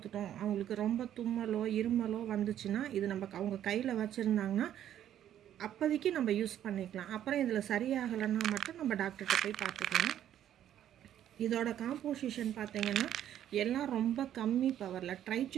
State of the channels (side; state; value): left; quieter; 11.0 dB